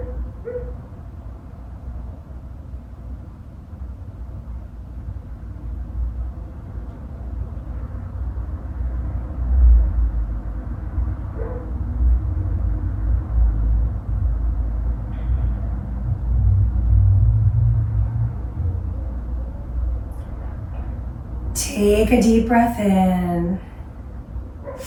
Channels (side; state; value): both; identical; correlation 1.00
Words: Take a deep breath in.